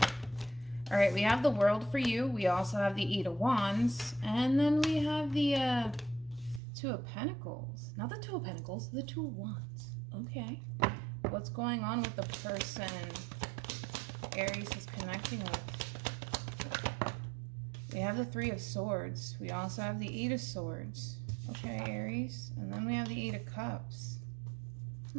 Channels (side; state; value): left; drops out; at 6.6 s